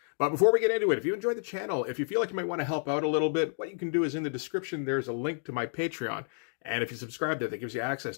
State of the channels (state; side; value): silent; right; digital silence